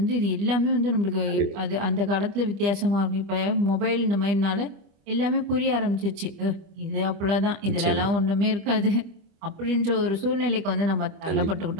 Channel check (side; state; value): left; late; 25 ms